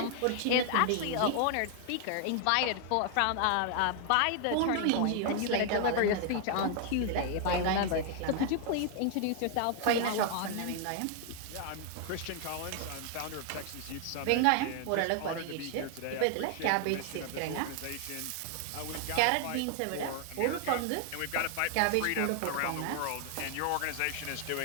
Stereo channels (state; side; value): different; both; correlation 0.00